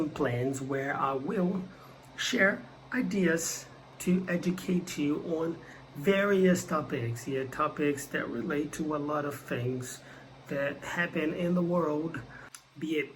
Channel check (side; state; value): both; identical; correlation 1.00